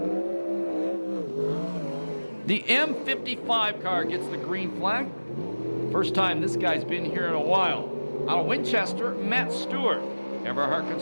The M55 car gets the green flag. First time this guy's been here in a while. Out of Winchester, Matt Stewart. Everhart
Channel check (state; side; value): inverted; both; correlation -1.00